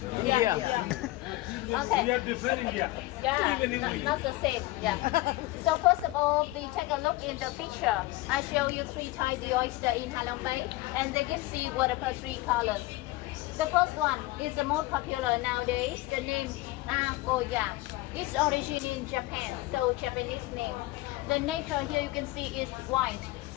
India. Okay. We are different India. Yeah, not the same. Yeah. So first of all, we take a look in the picture. I show you three types of oyster in Halong Bay, and they give seawater per three colors. The first one is the most popular nowadays. The name Akoya. Its origin in Japan, so Japanese name. The nature here you can see is white,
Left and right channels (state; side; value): quieter; right; 19.3 dB